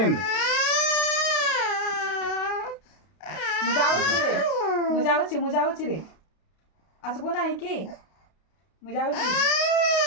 मुजावची रे असं कोण आहे की मुजावची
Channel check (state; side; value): late; right; 32 ms